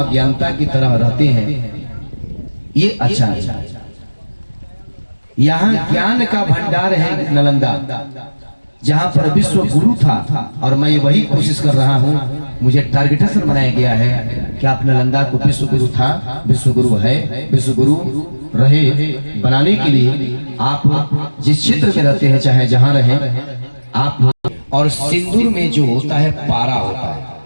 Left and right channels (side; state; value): both; inverted; correlation -1.00